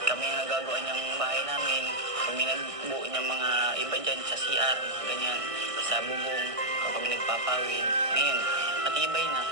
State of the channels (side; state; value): left; late; 1.6 ms